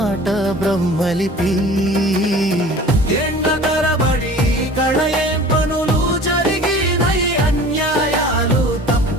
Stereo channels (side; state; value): both; normal; correlation 0.43